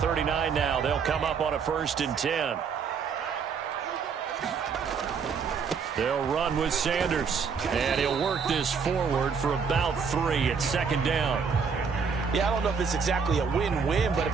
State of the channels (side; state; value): left; quieter; 6.0 dB